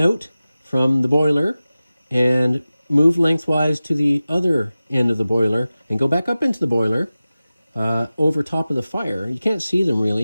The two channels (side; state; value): both; inverted; correlation -0.95